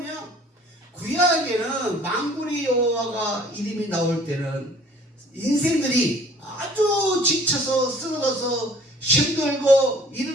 구약에는 만군의 여호와가 이름이 나올 때는 인생들이 아주 지쳐서 쓰러져서 힘들고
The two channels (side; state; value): both; normal; correlation 0.53